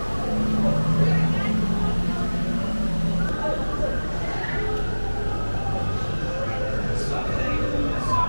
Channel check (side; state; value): both; inverted; correlation -1.00